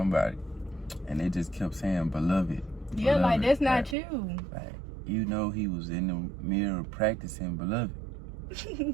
and they just kept saying beloved. Yeah, like that's not like, you. Like, you know, he was in the mirror practicing beloved.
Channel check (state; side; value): drops out; left; at 4.0 s